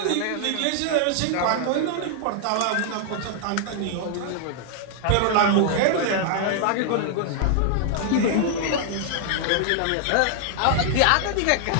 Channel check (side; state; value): both; different; correlation 0.00